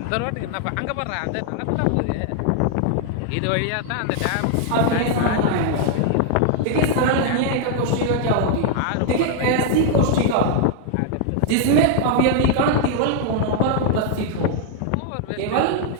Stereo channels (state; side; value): different; both; correlation 0.00